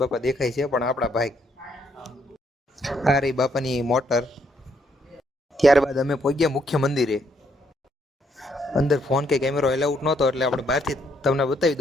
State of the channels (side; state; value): both; normal; correlation 0.72